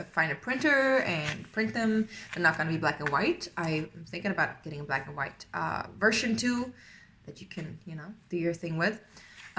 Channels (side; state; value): both; identical; correlation 1.00